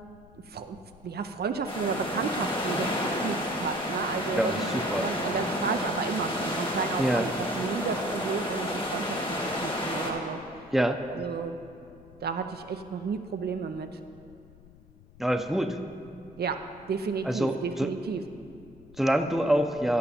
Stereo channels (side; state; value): left; noise; rumble, 23 dB below the sound